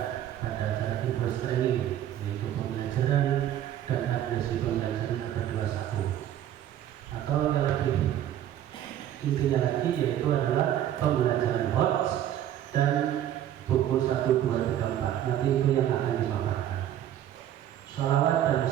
pada acara Infos Training, yaitu pembelajaran dan adresi pembelajaran abad 21, atau yang lebih intinya lagi yaitu adalah pembelajaran HOTS dan buku 1, 2, 3, 4. Nanti itu yang akan dimaparkan. Salawat dan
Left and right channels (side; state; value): left; quieter; 11.3 dB